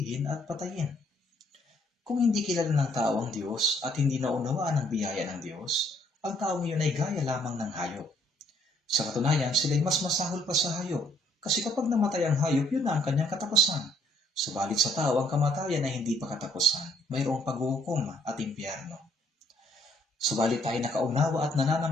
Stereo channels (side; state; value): both; normal; correlation 0.66